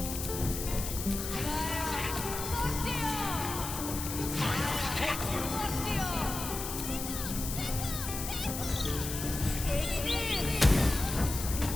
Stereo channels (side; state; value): left; noise; hiss, 6 dB below the sound